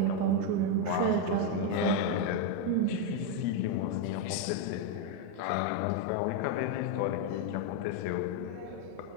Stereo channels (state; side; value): different; both; correlation 0.01